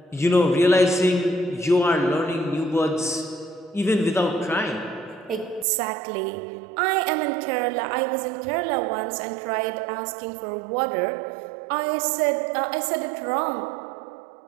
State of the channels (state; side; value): drops out; left; at 5.7 s